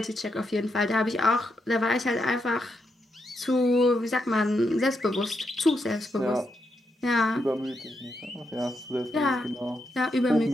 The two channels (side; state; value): both; normal; correlation 0.82